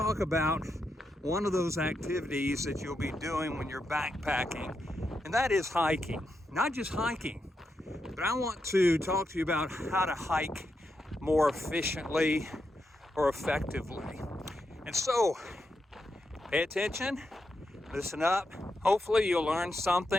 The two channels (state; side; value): normal; both; correlation 0.84